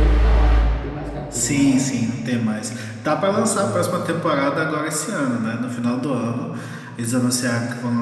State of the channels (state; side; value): identical; both; correlation 1.00